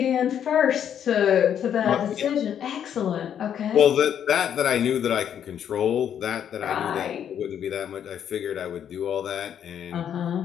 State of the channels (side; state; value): right; quieter; 9.1 dB